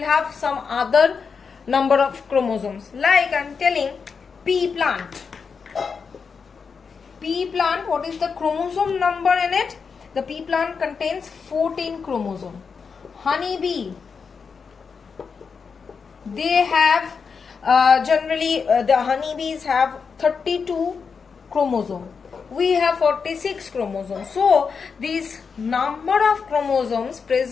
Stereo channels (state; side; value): quieter; right; 5.6 dB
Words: have some other number of chromosomes. Like I am telling pea plant. Pea plant, what is the chromosome number in it? The pea plant contains 14 chromosomes. Honeybee, they have generally the honeybees have 32 chromosomes. We have 46 chromosomes. So these number of chromosomes